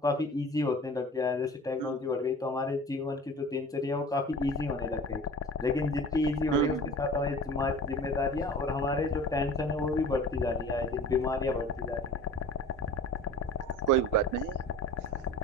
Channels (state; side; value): normal; both; correlation 0.42